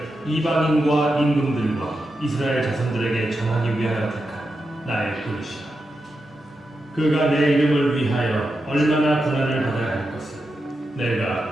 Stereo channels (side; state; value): both; normal; correlation 0.88